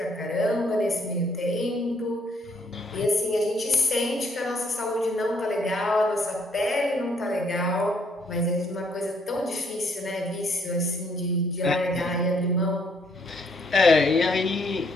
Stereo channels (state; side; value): normal; both; correlation 0.68